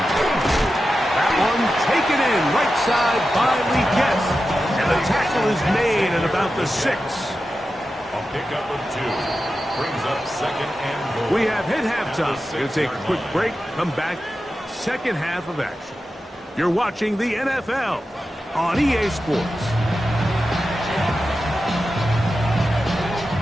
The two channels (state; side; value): normal; both; correlation 0.91